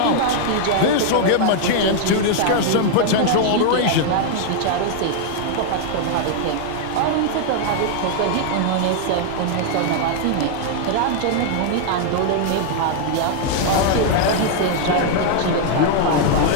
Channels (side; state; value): both; different; correlation 0.00